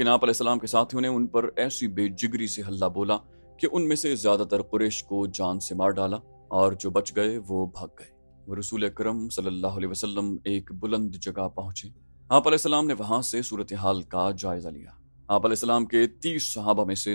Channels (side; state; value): both; inverted; correlation -1.00